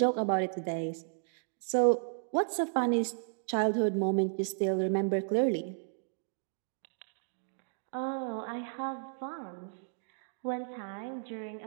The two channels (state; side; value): silent; left; digital silence